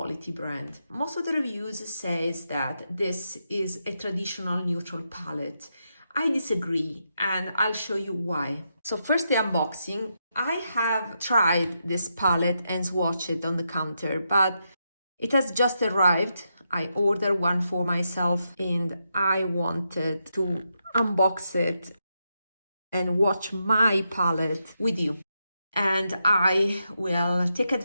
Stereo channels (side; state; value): both; inverted; correlation -0.84